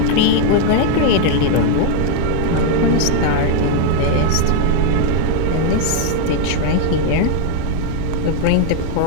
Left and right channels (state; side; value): different; both; correlation 0.00